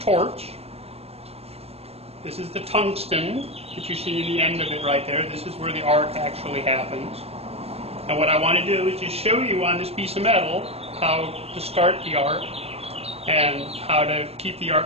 This is the tungsten that you see in the end of it right there. This is where the arc actually happens. And what I want to do is just show you on this piece of metal how to start the arc and how to keep the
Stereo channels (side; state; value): left; late; 0.29 ms